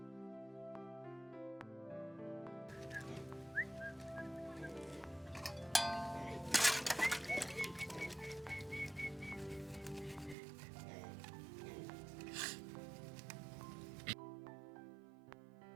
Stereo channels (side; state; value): left; drops out; at 10.4 s